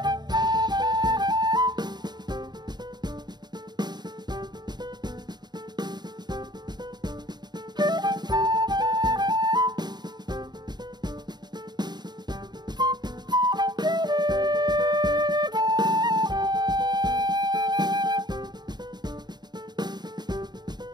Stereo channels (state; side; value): late; left; 0.20 ms